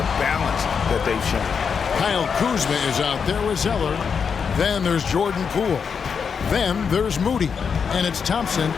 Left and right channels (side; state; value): right; quieter; 6.3 dB